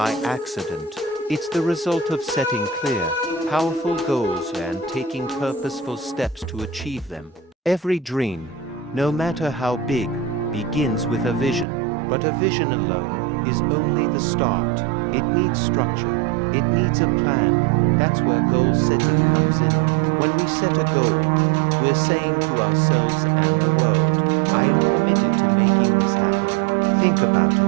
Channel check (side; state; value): left; drops out; at 11.7 s